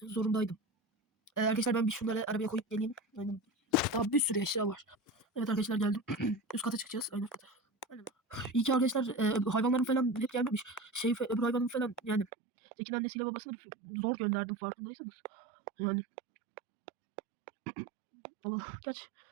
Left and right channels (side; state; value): left; drops out; at 12.2 s